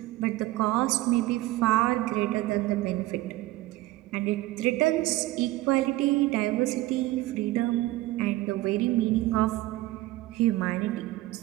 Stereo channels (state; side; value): quieter; left; 17.5 dB